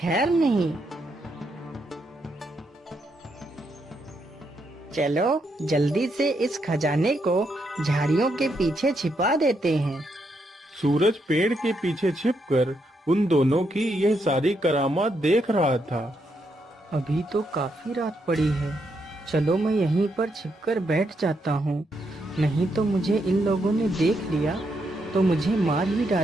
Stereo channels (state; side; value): normal; both; correlation 0.79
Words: नहीं। चलो जल्दी से इस खजाने को झाड़ियों के पीछे छिपा देते हैं। सूरज पेड़ के पीछे छिपकर उन दोनों की यह सारी करामात देख रहा था। अभी तो काफी रात पड़ी है, चलो मैं यहीं पर छिपकर बैठ जाता हूँ, नहीं तो मुझे इन लोगों ने देख लिया तो मुझे मार ही